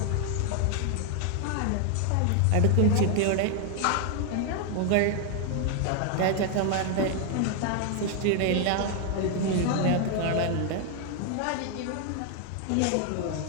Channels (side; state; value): both; different; correlation 0.00